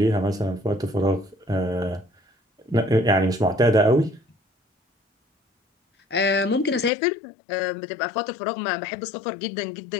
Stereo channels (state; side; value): drops out; right; at 6.9 s